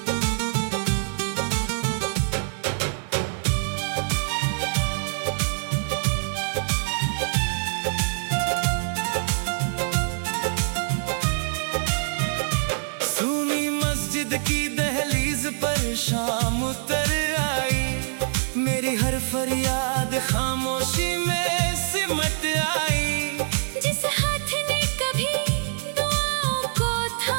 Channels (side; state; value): left; silent; digital silence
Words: की दहलीज पर शाम उतर आई। मेरी हर फरियाद खामोशी में सिमट आई। जिस हाथ ने कभी दुआओं को